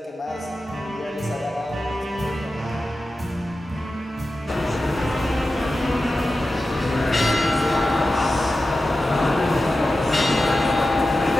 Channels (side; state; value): both; normal; correlation 0.93